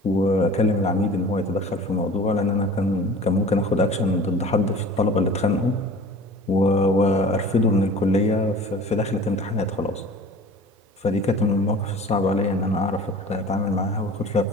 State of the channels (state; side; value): normal; both; correlation 0.42